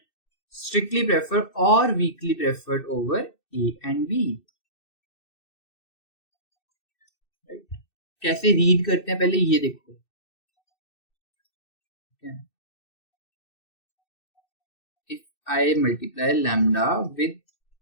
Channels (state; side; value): late; right; 2.6 ms